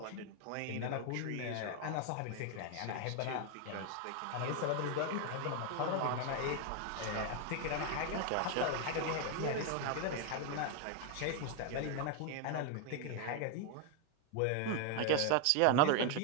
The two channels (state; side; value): different; both; correlation 0.01